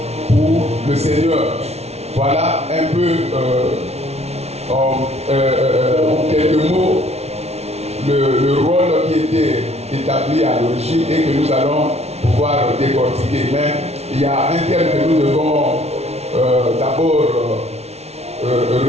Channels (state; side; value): late; left; 0.31 ms